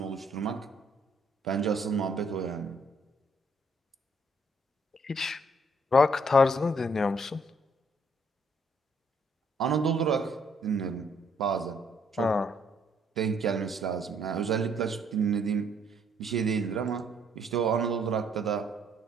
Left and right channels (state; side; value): normal; both; correlation 0.67